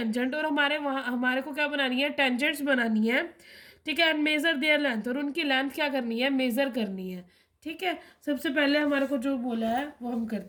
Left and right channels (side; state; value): both; identical; correlation 1.00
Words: और हमारे को क्या बनानी है, टेंजेंट्स बनानी है। ठीक है, एंड मेजर देयर लेंथ, और उनकी लेंथ क्या करनी है, मेजर करनी है। ठीक है, सबसे पहले हमारे को जो बोला है वो हम